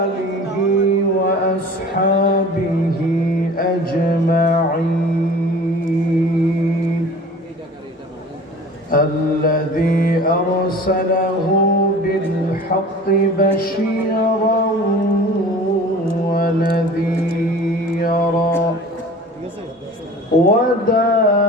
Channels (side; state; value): both; normal; correlation 0.42